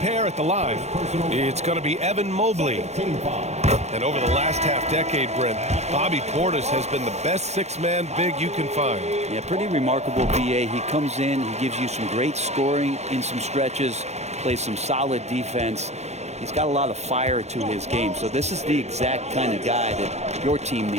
at the line. It's going to be Evan Mobley. And over the last half-decade, Brent, Bobby Portis has been the best six-man big you can find. Yeah, pretty remarkable, BA. He comes in, he gives you some great scoring in some stretches, plays some solid defense. He's got a lot of fire to his game. So this is the exact kind of guy that your team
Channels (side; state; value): left; late; 0.32 ms